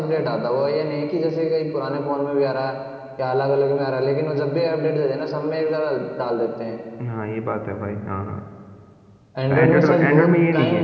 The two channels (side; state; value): both; identical; correlation 1.00